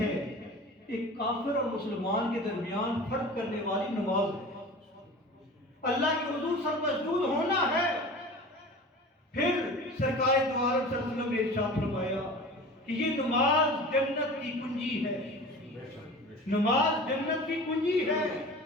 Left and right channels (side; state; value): both; normal; correlation 0.37